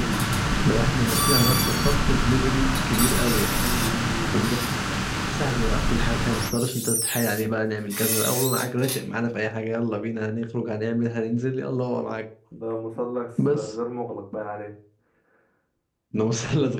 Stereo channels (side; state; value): both; identical; correlation 1.00